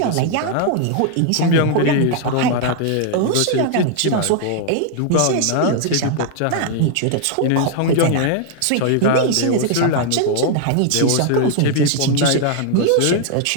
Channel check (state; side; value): different; both; correlation 0.00